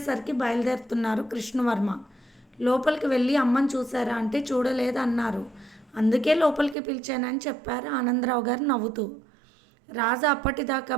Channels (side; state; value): left; drops out; at 6.8 s